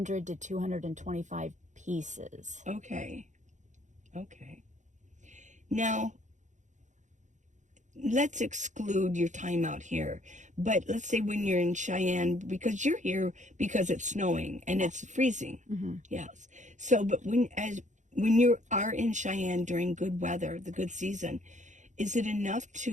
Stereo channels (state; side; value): late; left; 0.35 ms